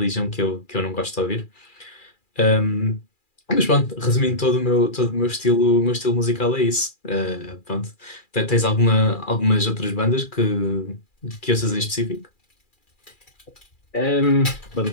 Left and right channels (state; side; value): late; right; 2.4 ms